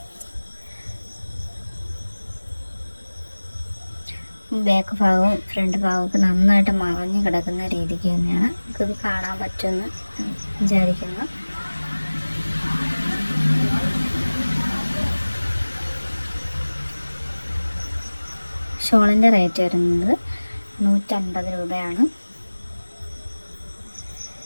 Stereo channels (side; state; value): both; inverted; correlation -1.00